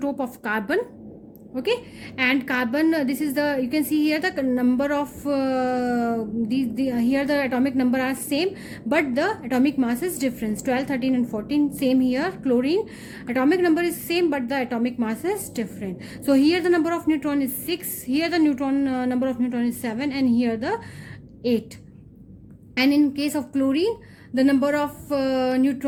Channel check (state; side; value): identical; both; correlation 1.00